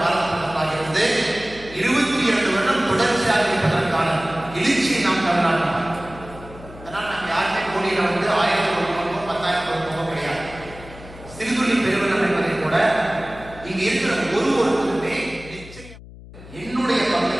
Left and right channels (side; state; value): left; noise; hum, 17 dB below the sound